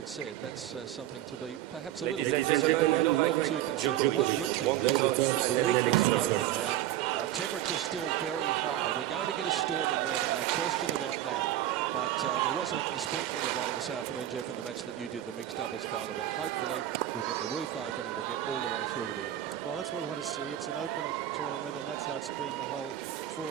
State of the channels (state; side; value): quieter; left; 12.8 dB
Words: said, that's something to be perhaps a little bit concerned about, but not too concerned. The one good thing is that the roof is open now. Temperature's still very high. We're going to get a storm in Melbourne, no question about that. But there was a sprinkling of rain this afternoon, Jeff, in the match that you did, the mixed doubles final. But hopefully we'll get the roof open and we'll get all the way through to the end. Well, that's what we want to see. It's an open tournament, and that's how it's been the whole